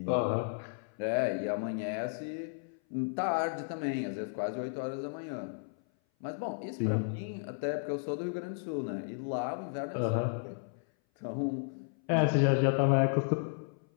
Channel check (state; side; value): silent; right; 56 dB below the other